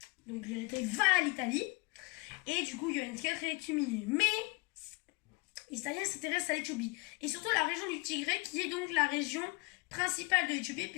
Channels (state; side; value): quieter; right; 27.3 dB